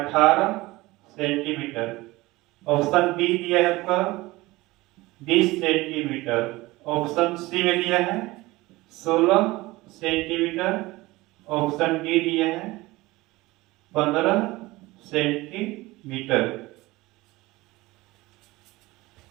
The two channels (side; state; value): left; quieter; 20.2 dB